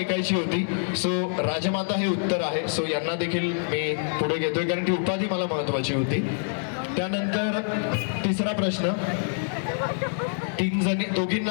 होती. सो राजमाता हे उत्तर आहे. सो यांना देखील मी पुढे घेतोय, कारण ती उपाधी मला महत्वाची होती. त्यानंतर तिसरा प्रश्न,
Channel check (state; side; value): silent; right; 61 dB below the other